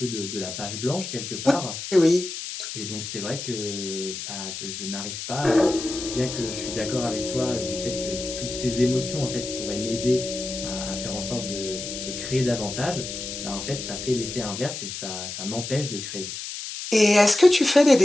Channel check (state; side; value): noise; left; hiss, 7 dB below the sound